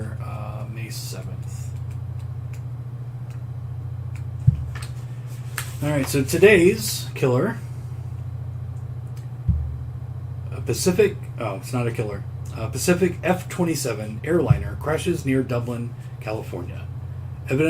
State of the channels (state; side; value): identical; both; correlation 1.00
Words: May 7th. All right, so today's killer, Pacific. Oh, it's not a killer. Pacific F-27 airliner crashes near Dublin, California.